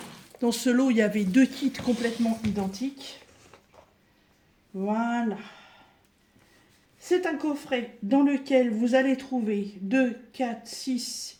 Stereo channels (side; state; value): both; identical; correlation 1.00